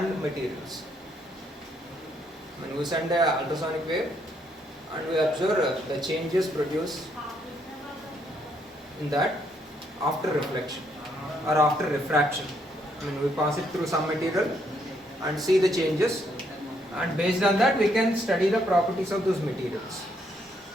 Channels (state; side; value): normal; both; correlation 0.72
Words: materials. When we send an ultrasonic wave and we observe the changes produced in that after reflection or after refraction. I mean, we pass it through some material and see the changes, and based on that we can study the properties of those materials.